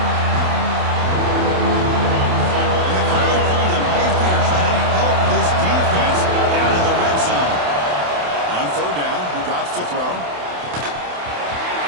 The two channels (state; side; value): late; left; 28 ms